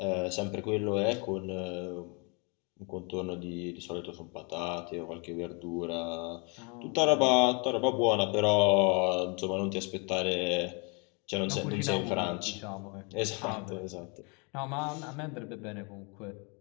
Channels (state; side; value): quieter; right; 33.2 dB